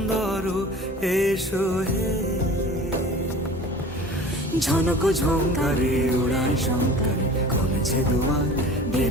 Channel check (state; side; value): normal; both; correlation 0.41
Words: এসো হে। ঝনক ঝঙ্কারে উড়ায় শঙ্কারে কমেছে দুয়ার,